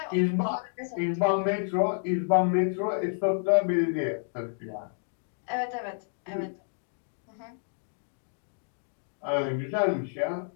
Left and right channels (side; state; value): right; silent; digital silence